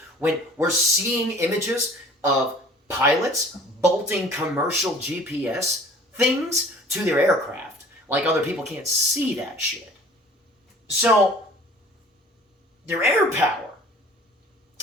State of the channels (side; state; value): both; normal; correlation 0.49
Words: When we're seeing images of pilots bolting commercial GPS things to their aircraft, like other people can't see that shit. So, their air power